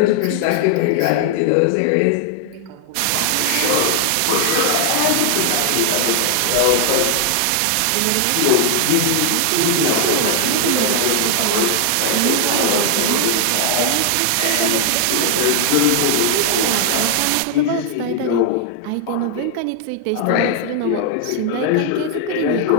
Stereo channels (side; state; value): both; different; correlation 0.00